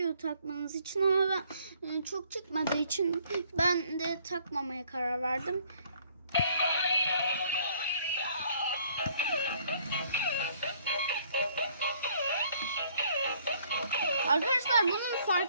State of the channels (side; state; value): both; inverted; correlation -0.62